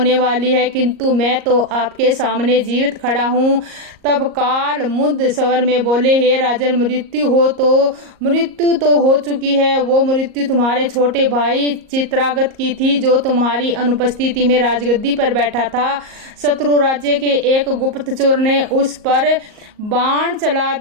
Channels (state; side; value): late; left; 38 ms